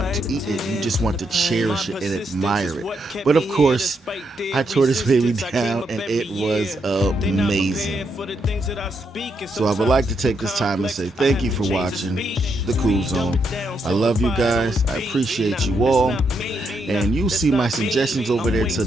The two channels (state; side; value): normal; both; correlation 0.79